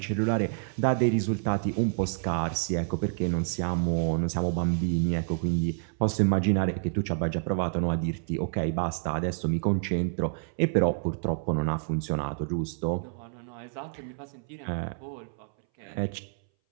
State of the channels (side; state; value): left; silent; 59 dB below the other